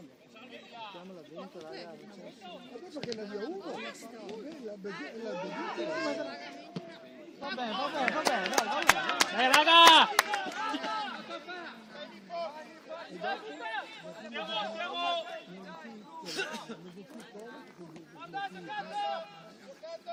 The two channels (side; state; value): both; identical; correlation 1.00